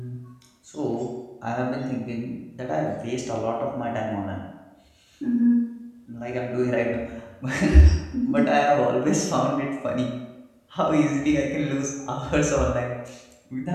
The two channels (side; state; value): both; identical; correlation 1.00